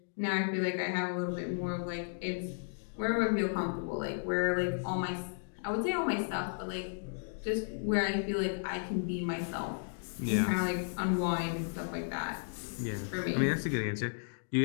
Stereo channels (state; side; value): silent; right; digital silence